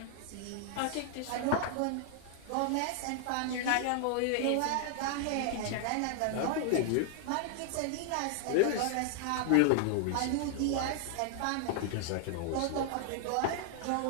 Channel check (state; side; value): different; both; correlation 0.00